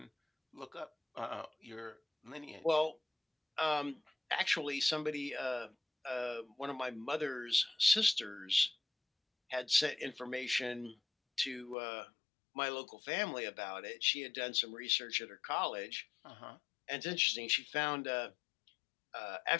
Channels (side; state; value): right; drops out; at 11.8 s